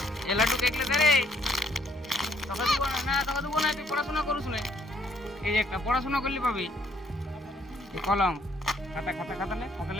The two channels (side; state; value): both; normal; correlation 0.66